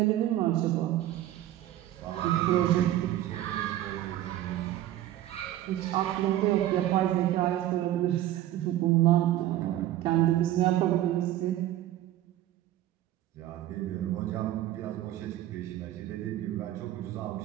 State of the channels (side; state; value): left; quieter; 13.6 dB